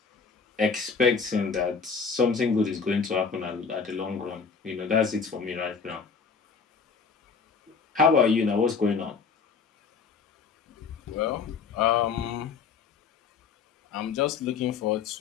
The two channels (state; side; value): quieter; right; 5.5 dB